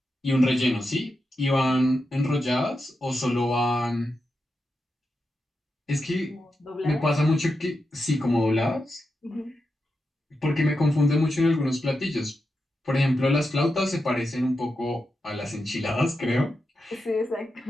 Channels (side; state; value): both; normal; correlation 0.88